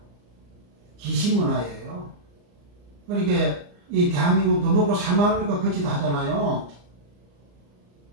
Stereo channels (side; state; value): left; late; 34 ms